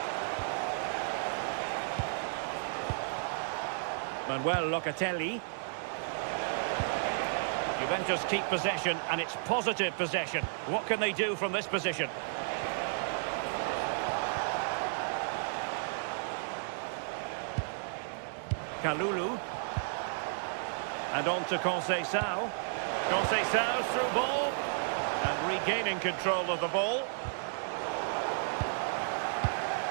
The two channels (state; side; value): silent; left; digital silence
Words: Manuel Locatelli. Juventus keep possession, and it's positive possession. What can they do from this position? Kalulu. And on to Conceição. Conceição's through ball. And regaining control of the ball.